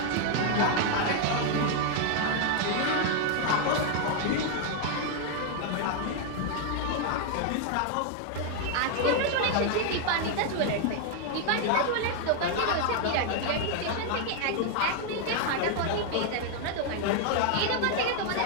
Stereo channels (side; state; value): both; different; correlation 0.00